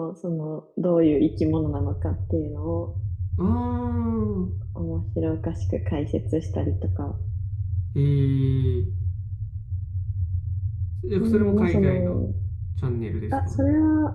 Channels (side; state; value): both; identical; correlation 1.00